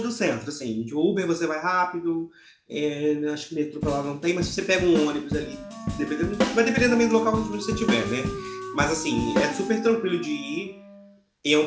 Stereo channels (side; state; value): both; identical; correlation 1.00